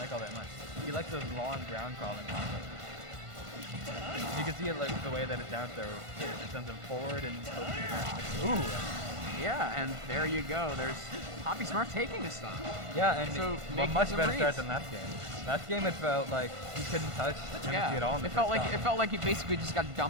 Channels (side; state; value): left; late; 1.5 ms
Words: all that much. He likes those long ground crawling combos. You can see it like the way that it's down throw. It sends him forward and ooh. Yeah, and there you go. There's Papi Smurf taking a stock. Yeah, and so a much better start than last game. Last game it felt like he couldn't touch Amnesty at all. It felt like he basically just got